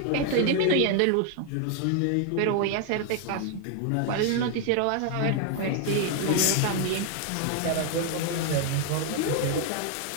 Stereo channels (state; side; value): different; both; correlation 0.00